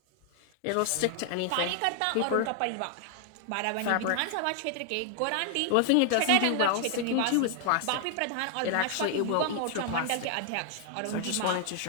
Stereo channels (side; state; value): both; different; correlation 0.00